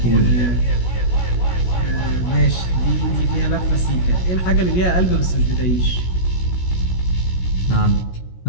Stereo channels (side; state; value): right; late; 16 ms